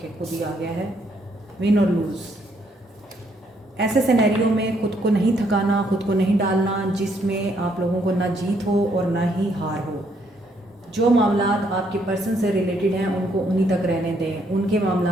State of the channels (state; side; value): normal; both; correlation 0.71